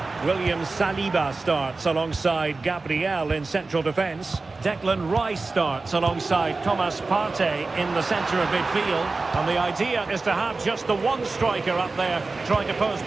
William Saliba starts alongside Gabriel in central defence. Declan Rice starts alongside Thomas Partey in the centre of midfield. And the idea is to have just the one striker up there trying to pose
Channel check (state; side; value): quieter; left; 3.7 dB